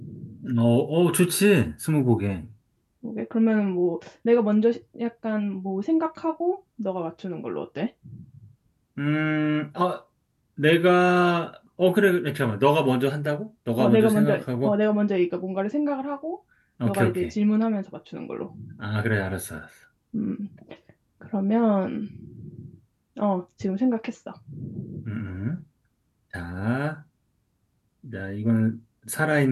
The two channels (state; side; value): identical; both; correlation 1.00